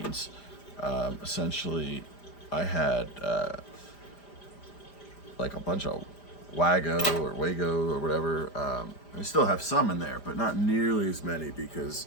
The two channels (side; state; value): right; late; 5.0 ms